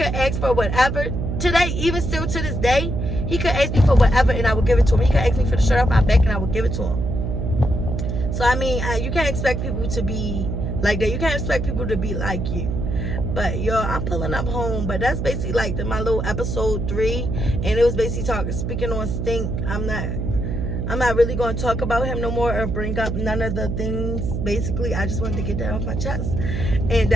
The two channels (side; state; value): right; noise; hum, 2 dB below the sound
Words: ask for whatever today, even still to this day, he could ask me for whatever and I would give it to him. He could ask me for the shirt off my back and I would give it to him. So I mean, you can't expect people to be like that. You can't expect people to be like you. But yo, I'm pulling up home. But that's basically like my little episode 3, and it was basically speaking on STANK. I'm not really going to talk about him no more or bring up none of the things. Basically, I just wanted to get that off my chest, and